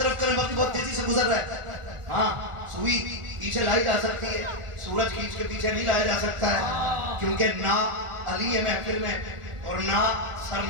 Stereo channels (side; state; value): left; late; 1.4 ms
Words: کریں. وقت بہت تیزی سے گزر رہا ہے. ہاں سوئی پیچھے لائی جا سکتی ہے, سورج کھینچ کے پیچھے نہیں لایا جا سکتا ہے, کیونکہ نہ علی ہے محفل میں اور نہ سر